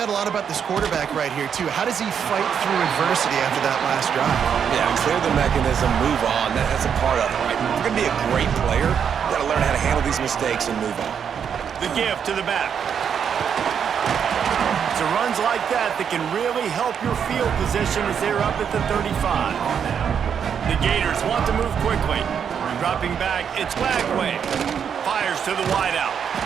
a lot about this quarterback right here, too. How does he fight through adversity after that last drive? Yeah, clear the mechanism, move on. That's a part of it, right? If you're going to be a great player, you got to learn how to handle these mistakes and move on. The give to the back. It's runs like that can really help your field position as they're up at the 35. The Gators want to move quickly. Dropping back, it's Lagway. Fires to the wideout.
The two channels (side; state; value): left; quieter; 7.6 dB